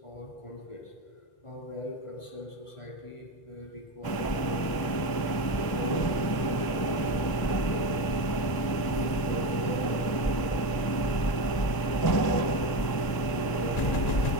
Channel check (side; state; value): right; late; 1.0 ms